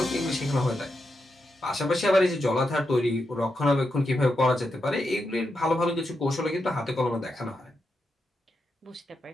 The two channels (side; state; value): both; normal; correlation 0.85